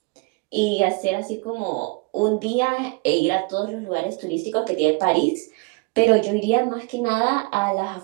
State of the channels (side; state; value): left; quieter; 28.0 dB